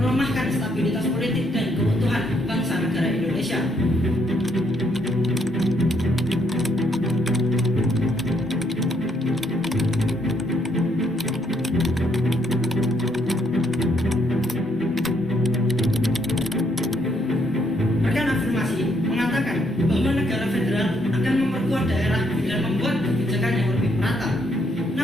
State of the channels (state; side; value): normal; both; correlation 0.72